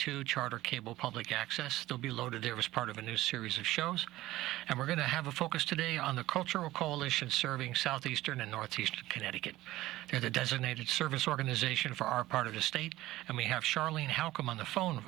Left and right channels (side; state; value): left; quieter; 16.5 dB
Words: Charter Cable Public Access. They'll be loaded there as part of a new series of shows. And we're going to have a focus today on the Cultural Coalition serving southeastern and northeastern Connecticut. They're the designated service organization for our part of the state, and we have Charlene Halcomb on